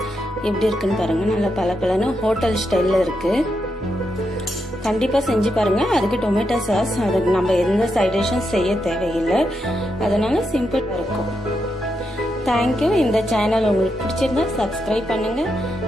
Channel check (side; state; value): both; normal; correlation 0.83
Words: எப்படி இருக்குன்னு பாருங்க. நல்லா பலப்பலன்னு ஹோட்டல் ஸ்டைல்ல இருக்கு. கண்டிப்பா செஞ்சு பாருங்க. அதுக்கு டொமேட்டோ சாஸ், அதுக்கு நம்ம எந்த சைட் டிஷ்ஷும் செய்ய தேவையில்லை. அதனால சிம்பிளா இருக்கும். தேங்க்யூ. இந்த சேனல் உங்களுக்கு பிடிச்சிருந்தா சப்ஸ்கிரைப் பண்ணுங்க,